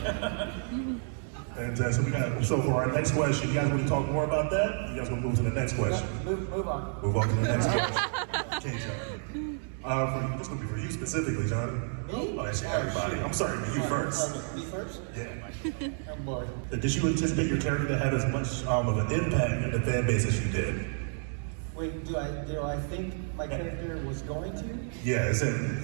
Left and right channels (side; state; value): left; silent; 58 dB below the other